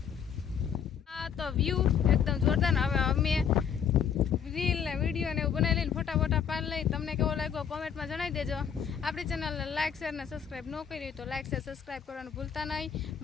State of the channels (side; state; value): right; quieter; 7.8 dB